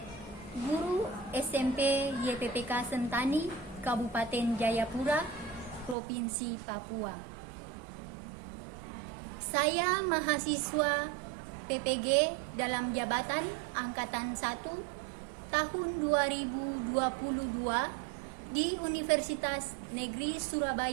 guru SMP YPPK Sentani, Kabupaten Jayapura, Provinsi Papua. Saya mahasiswa PPG dalam jabatan Angkatan 1 tahun 2022 di Universitas Negeri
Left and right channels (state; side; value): drops out; left; at 6.0 s